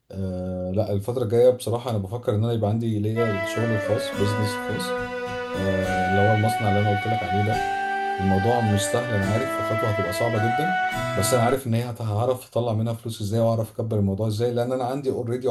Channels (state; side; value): identical; both; correlation 1.00